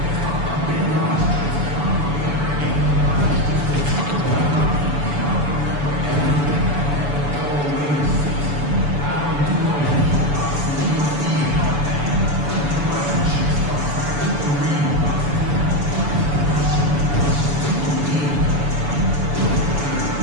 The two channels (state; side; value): late; left; 7.0 ms